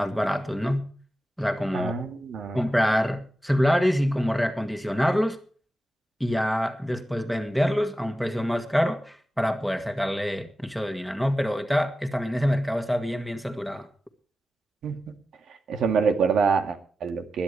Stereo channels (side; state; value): both; normal; correlation 0.92